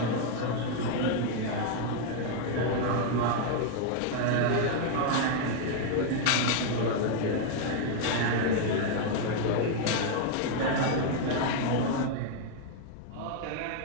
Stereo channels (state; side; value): different; both; correlation 0.00